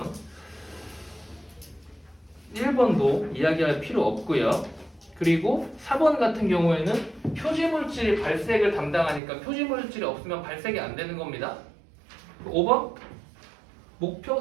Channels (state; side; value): drops out; left; at 9.2 s